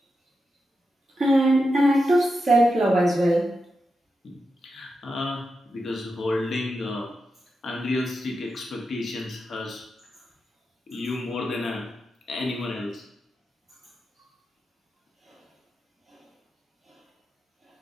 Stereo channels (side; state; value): both; normal; correlation 0.88